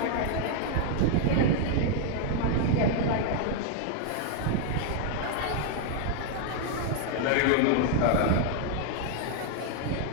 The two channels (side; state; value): both; different; correlation 0.00